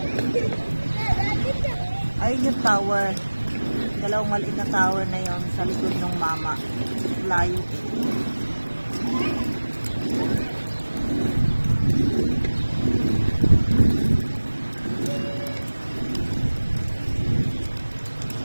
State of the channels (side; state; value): both; inverted; correlation -1.00